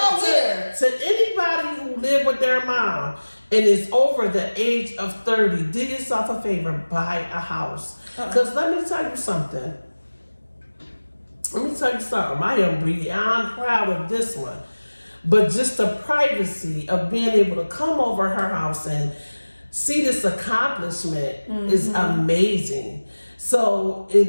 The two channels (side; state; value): both; inverted; correlation -1.00